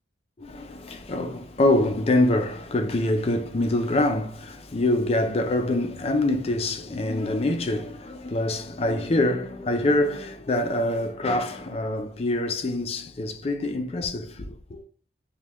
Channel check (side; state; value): both; normal; correlation 0.52